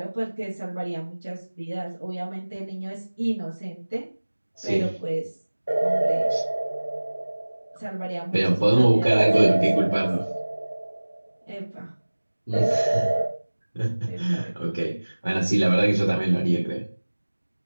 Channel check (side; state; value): both; inverted; correlation -1.00